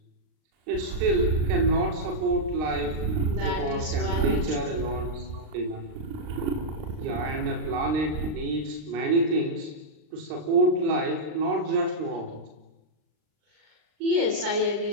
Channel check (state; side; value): late; left; 39 ms